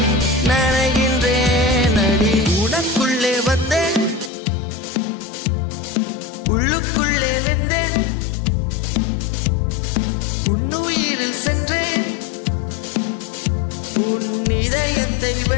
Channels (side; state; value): right; drops out; at 4.3 s